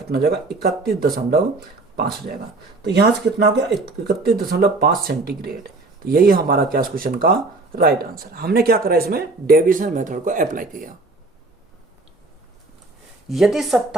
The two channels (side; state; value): left; quieter; 3.3 dB